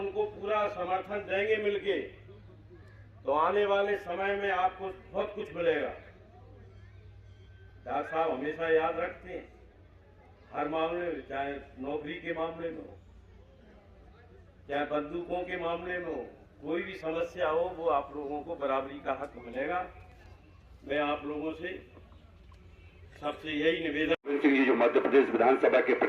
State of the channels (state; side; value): identical; both; correlation 1.00